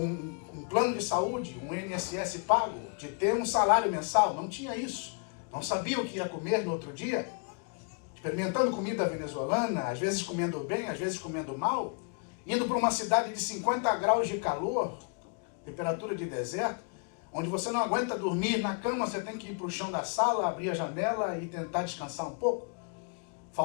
plano de saúde, um INSS pago, de ter um salário mensal. Não tinha isso. Não sabia o que ia comer no outro dia. Experimentando comida venezuelana, às vezes comendo bem, às vezes comendo mal. Indo para uma cidade de 50 graus de calor, temperatura de deserto, onde você não aguenta dormir na cama, você tem que ir para o chão da sala, abrir a janela e tentar descansar um pouco.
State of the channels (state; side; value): quieter; right; 39.0 dB